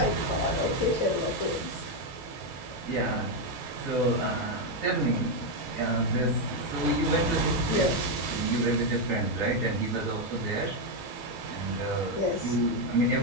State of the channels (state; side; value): normal; both; correlation 0.04